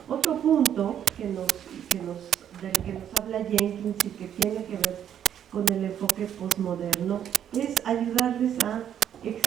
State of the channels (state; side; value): quieter; left; 9.6 dB